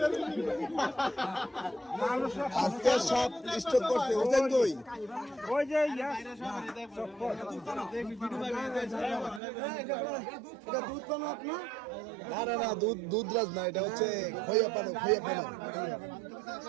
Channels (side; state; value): left; drops out; at 9.4 s